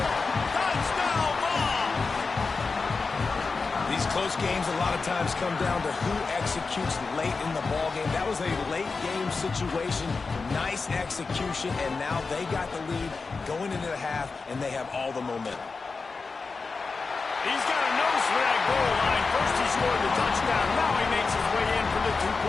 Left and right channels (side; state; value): right; quieter; 4.3 dB